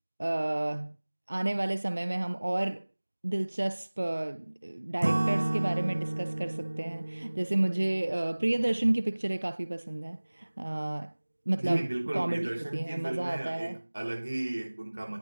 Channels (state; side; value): inverted; both; correlation -1.00